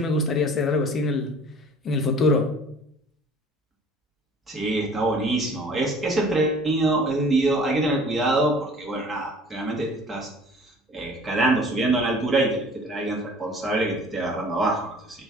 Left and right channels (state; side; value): normal; both; correlation 0.49